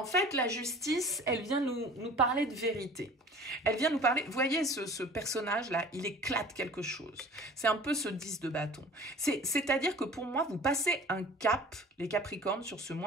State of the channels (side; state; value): both; normal; correlation 0.45